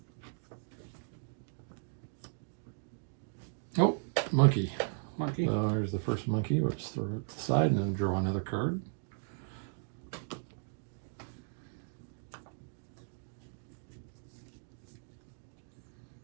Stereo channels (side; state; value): left; silent; digital silence